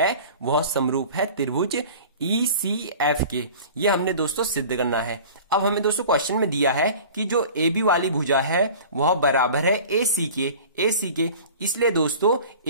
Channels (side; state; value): both; inverted; correlation -0.41